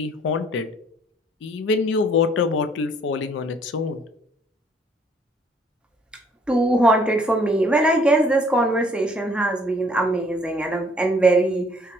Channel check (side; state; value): both; normal; correlation 0.61